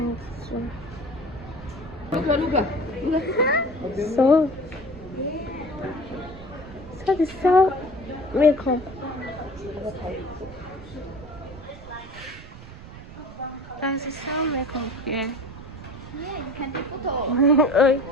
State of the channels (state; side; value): noise; right; rumble, 16 dB below the sound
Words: So they sell makeup. Guys, they sell makeup here. Yeah, you can take photo.